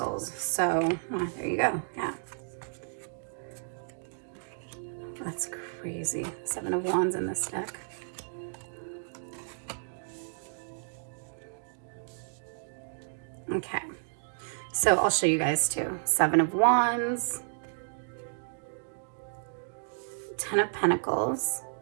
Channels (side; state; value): left; silent; digital silence